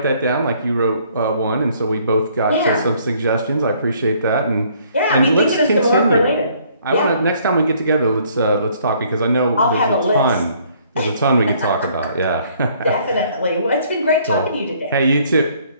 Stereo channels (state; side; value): inverted; both; correlation -0.62